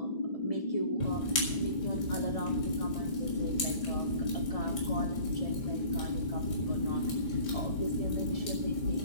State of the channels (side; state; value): right; late; 1.7 ms